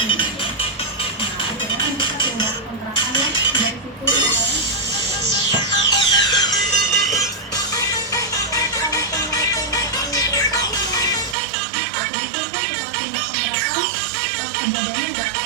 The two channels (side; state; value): left; drops out; at 11.4 s